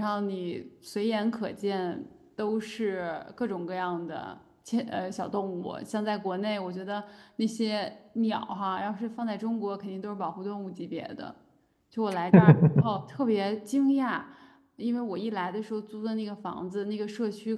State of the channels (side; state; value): both; identical; correlation 1.00